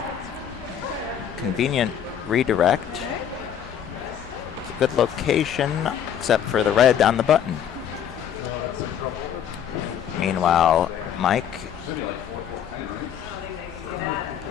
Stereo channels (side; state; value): right; quieter; 9.1 dB